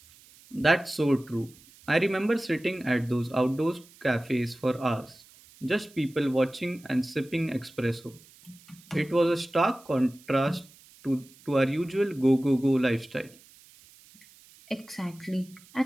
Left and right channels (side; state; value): right; noise; hiss, 25 dB below the sound